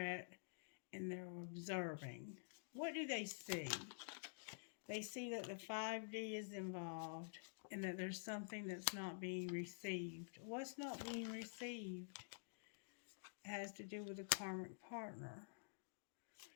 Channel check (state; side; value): silent; right; digital silence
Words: and they're observing. What do they see? They see that the 5D is involved and that there's something that's not being received. What's not being received? It has to do with a karmic partner.